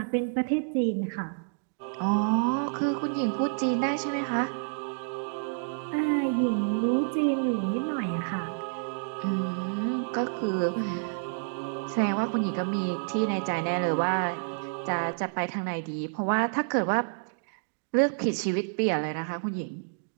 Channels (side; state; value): left; silent; digital silence